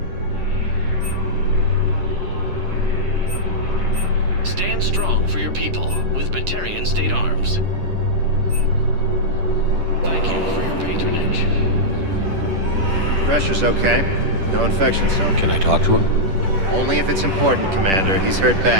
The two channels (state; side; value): late; left; 10 ms